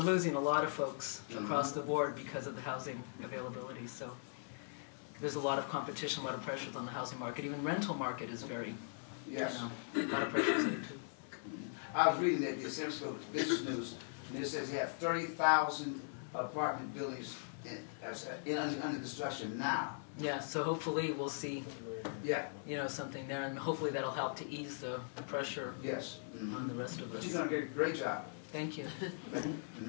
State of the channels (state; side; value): silent; right; digital silence